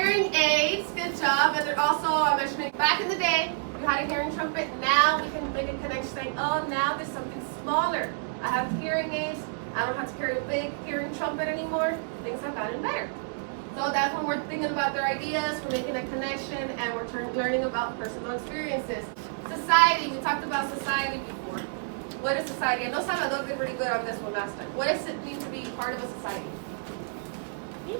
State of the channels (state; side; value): silent; left; digital silence